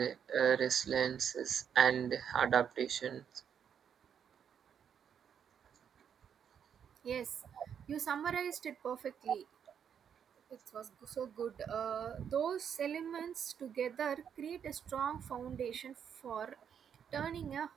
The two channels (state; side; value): quieter; left; 8.0 dB